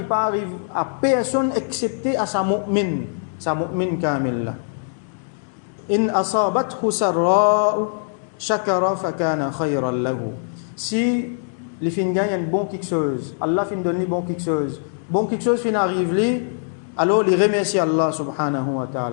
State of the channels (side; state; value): right; silent; digital silence